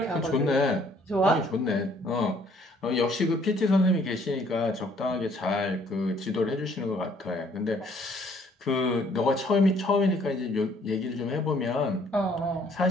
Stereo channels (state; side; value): normal; both; correlation 0.62